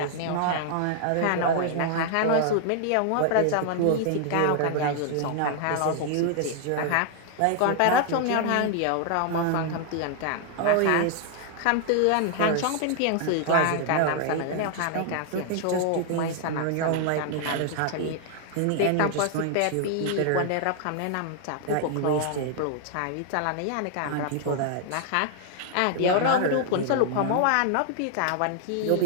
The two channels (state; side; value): different; both; correlation 0.00